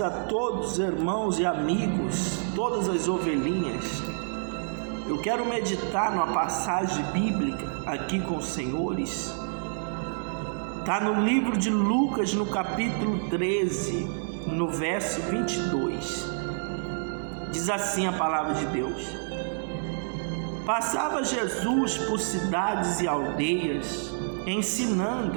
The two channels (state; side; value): silent; left; digital silence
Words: a todos, irmãos e amigos, todas as ovelhinhas. Eu quero meditar numa passagem bíblica aqui com os senhores. Está no livro de Lucas, no capítulo 13, no verso 22. Diz assim a palavra de Deus: Passava Jesus por cidades e aldeias,